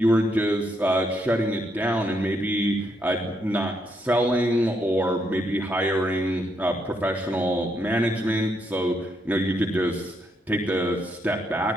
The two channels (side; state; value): both; normal; correlation 0.77